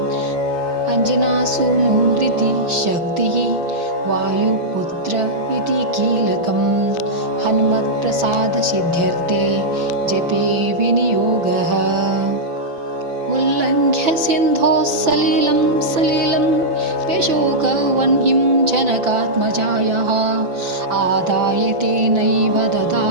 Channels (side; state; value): left; late; 6.0 ms